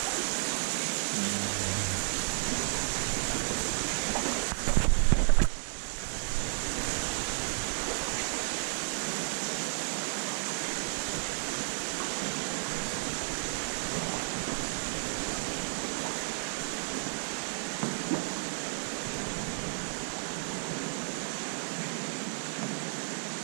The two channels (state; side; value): silent; left; digital silence